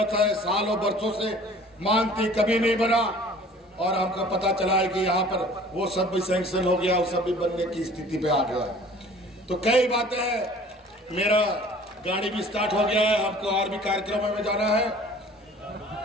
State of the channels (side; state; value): both; normal; correlation 0.49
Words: है, सालों बरसों से मांगती कभी नहीं बना। और हमको पता चला है कि यहाँ पर वो सब भी सैंक्शन हो गया, वो सब भी बनने की स्थिति पे आ गया। तो कई बातें हैं। मेरा गाड़ी भी स्टार्ट हो गया है, हमको और भी कार्यक्रम में जाना है।